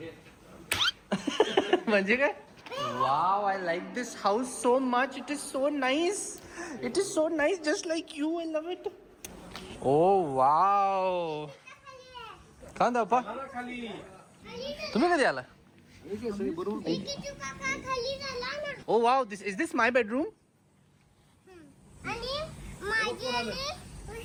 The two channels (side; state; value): both; identical; correlation 1.00